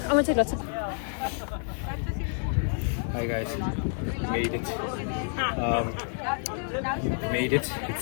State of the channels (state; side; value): silent; right; 59 dB below the other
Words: I want to take lots of... Hi guys, made it. Made it.